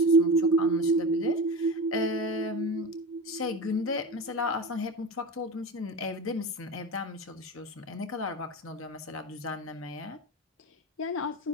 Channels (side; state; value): both; normal; correlation 0.27